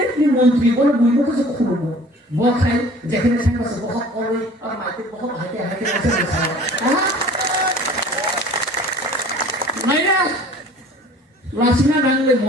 ni menteri boleh buat apa saja kubu. Bukan jangan saya masuk bohong oleh orang mati bohong hati masih salah. Mana? লাসিনা নাংলে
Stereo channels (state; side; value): normal; both; correlation 0.48